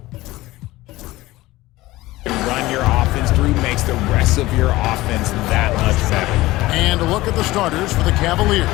run your offense through makes the rest of your offense that much better. And a look at the starters for the Cavaliers.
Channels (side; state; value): right; quieter; 18.3 dB